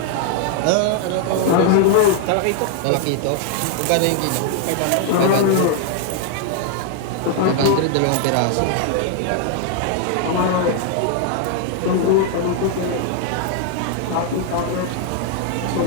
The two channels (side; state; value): both; different; correlation 0.00